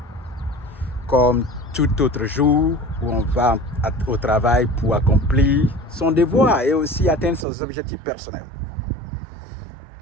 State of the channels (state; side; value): drops out; left; at 7.5 s